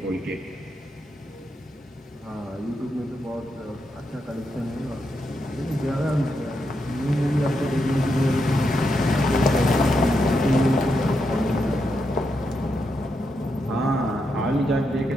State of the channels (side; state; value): both; normal; correlation 0.83